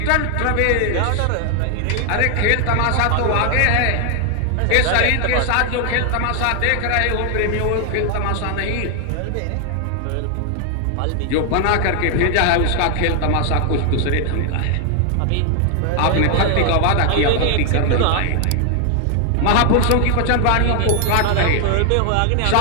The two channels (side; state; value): both; different; correlation 0.00